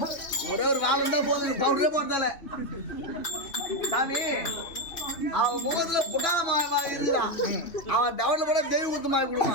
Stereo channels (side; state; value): right; late; 3.0 ms